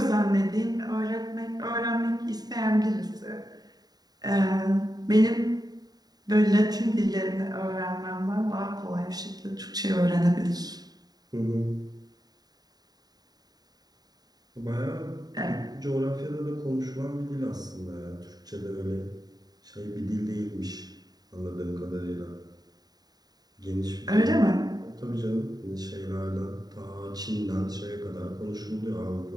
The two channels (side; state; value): left; late; 0.19 ms